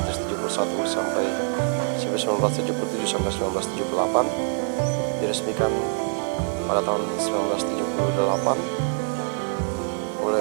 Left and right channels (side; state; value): left; silent; 60 dB below the other